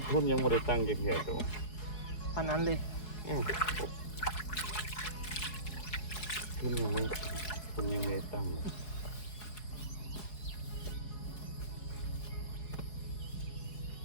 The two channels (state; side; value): late; right; 4.7 ms